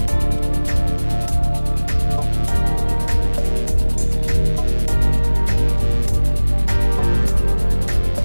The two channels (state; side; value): inverted; both; correlation -1.00